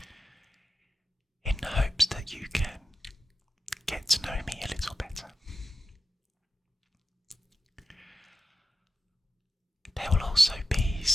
in the hopes that you can get to know me a little better. There will also be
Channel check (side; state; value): both; normal; correlation 0.91